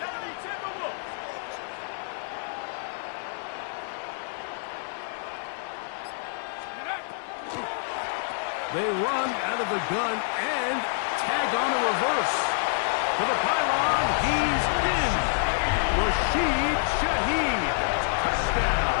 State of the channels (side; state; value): right; silent; 59 dB below the other